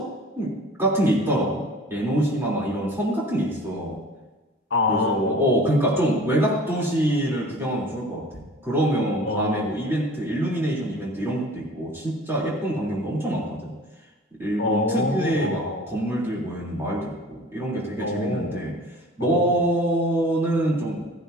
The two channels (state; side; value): normal; both; correlation 0.45